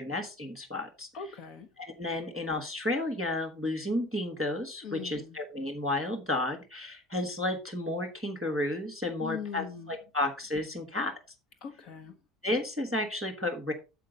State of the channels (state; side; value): normal; both; correlation 0.42